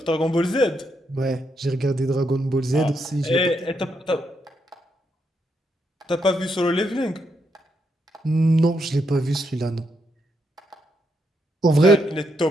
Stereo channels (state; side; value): normal; both; correlation 0.79